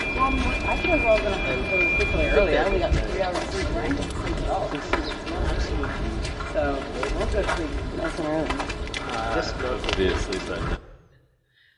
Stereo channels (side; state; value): both; identical; correlation 1.00